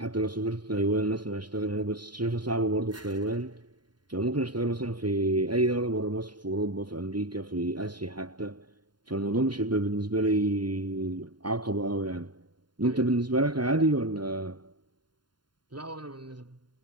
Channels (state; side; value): late; left; 0.71 ms